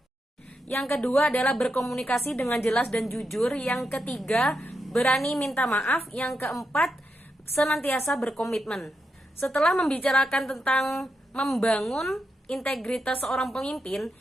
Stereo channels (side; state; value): both; normal; correlation 0.85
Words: Yang kedua adalah berkomunikasi dengan jelas dan jujur. Yang ketiga, berani minta maaf. Yang keempat, senantiasa berkomitmen. Setelah membicarakan tentang membangun integritas seorang pemimpin,